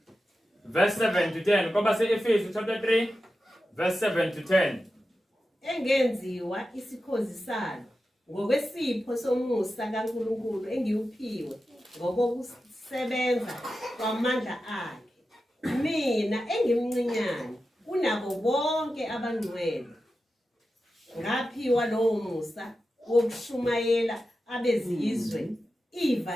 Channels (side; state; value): both; normal; correlation 0.92